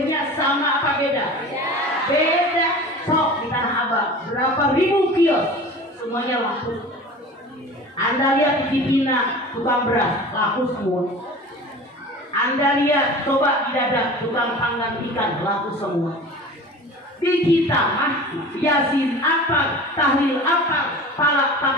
sama apa beda? Beda. Sok di Tanah Abang, berapa ribu kios, semuanya laku. Anda lihat di Cibina, tukang beras, laku semua. Anda lihat, coba di Dadap, tukang panggang ikan, laku semua. Di kita mah Yasin apa, tahlil apa, palak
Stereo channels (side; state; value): both; normal; correlation 0.38